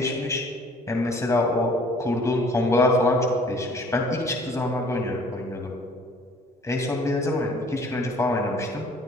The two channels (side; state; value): both; normal; correlation 0.54